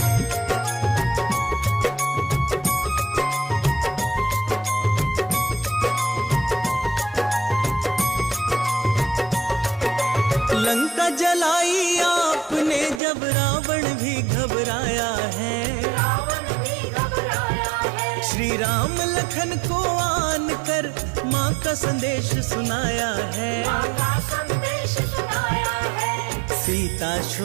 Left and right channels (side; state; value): left; drops out; at 13.0 s